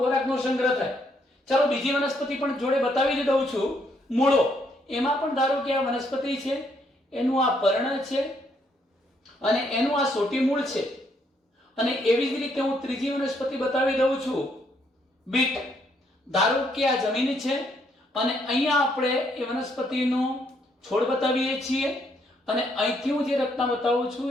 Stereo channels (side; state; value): both; normal; correlation 0.72